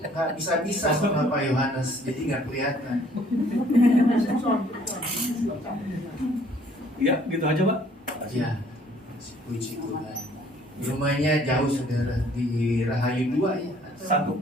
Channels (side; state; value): both; normal; correlation 0.59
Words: nggak bisa sama Pak Yohanes, jadi nggak kelihatan. Ya, gitu aja Pak. Ya, puji Tuhan. Rumahnya jauh saudara, di Rahayu 2 ya?